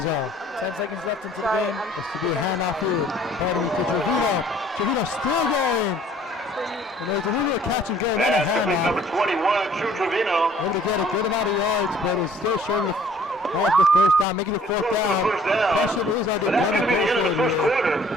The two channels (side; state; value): both; normal; correlation 0.56